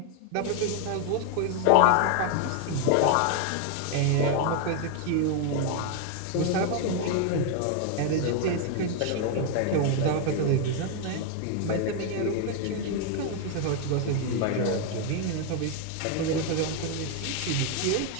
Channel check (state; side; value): different; both; correlation 0.00